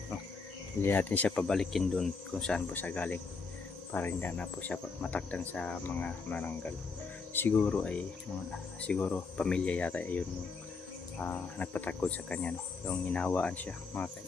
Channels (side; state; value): right; quieter; 4.6 dB